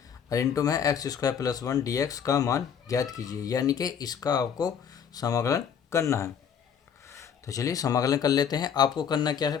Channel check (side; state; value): right; quieter; 7.7 dB